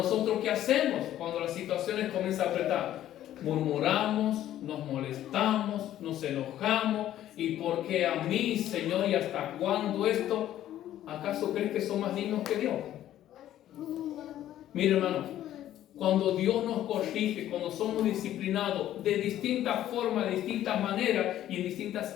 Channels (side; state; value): right; quieter; 12.4 dB